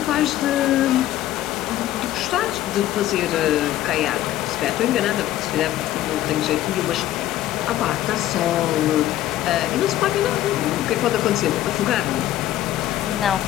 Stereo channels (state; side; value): quieter; right; 13.6 dB